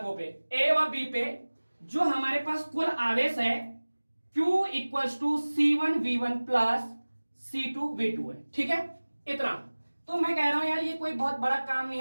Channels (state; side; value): inverted; both; correlation -1.00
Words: पे A व B पे जो हमारे पास कुल आवेश है Q equals to C1 V1 plus C2 V2 है, ठीक है। इतना तो मैं कह रहा हूं यार ये कोई बहुत बड़ा काम नहीं